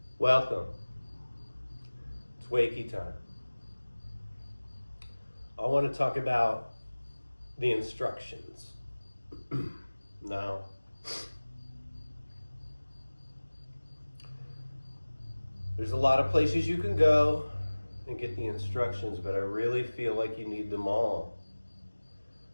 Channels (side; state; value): both; inverted; correlation -1.00